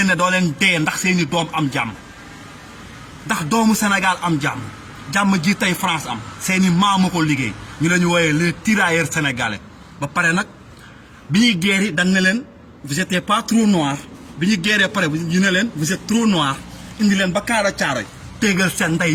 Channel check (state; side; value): identical; both; correlation 1.00